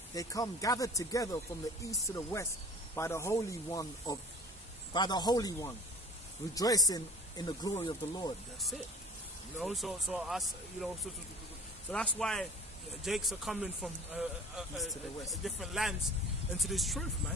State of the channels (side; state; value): both; normal; correlation 0.44